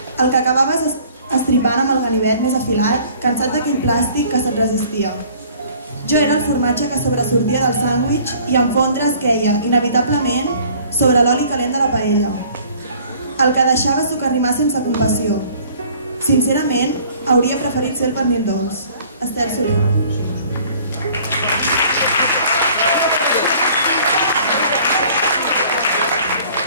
El que acabaves estripant amb el ganivet més afilat, cansat d'aquell plàstic que se't resistia. Jo era el formatge que sobresortia del sàndwich i en fondre es queia, inevitablement, sobre l'oli calent de la paella. El que deixava socarrimar sense compassió. Sincerament, hauria preferit ser el pernil dolç. Estel Soler.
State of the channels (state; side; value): inverted; both; correlation -0.53